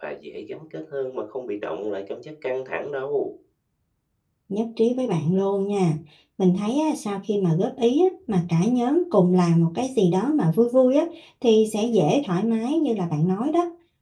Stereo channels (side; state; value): both; identical; correlation 1.00